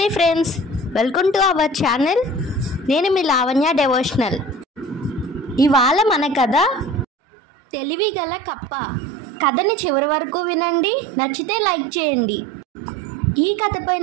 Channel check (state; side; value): drops out; left; at 7.1 s